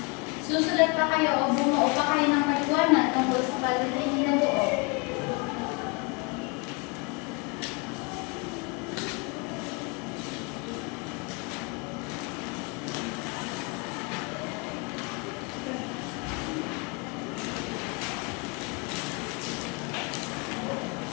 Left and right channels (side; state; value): right; quieter; 30.5 dB